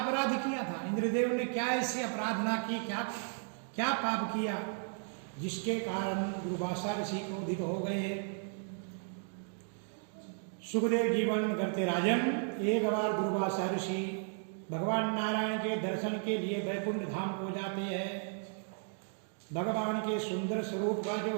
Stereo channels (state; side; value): silent; left; 55 dB below the other